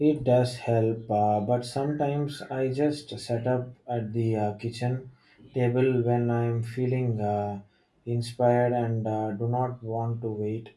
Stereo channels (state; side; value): identical; both; correlation 1.00